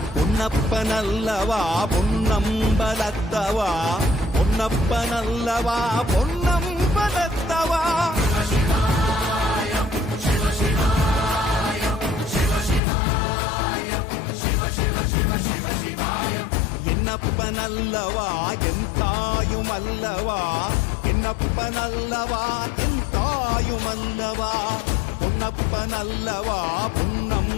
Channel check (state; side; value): drops out; right; at 12.8 s